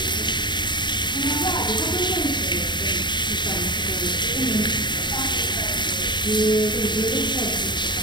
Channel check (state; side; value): late; right; 0.22 ms